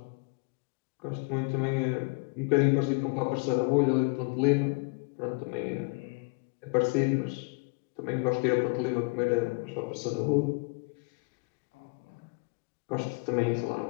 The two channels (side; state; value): right; quieter; 33.0 dB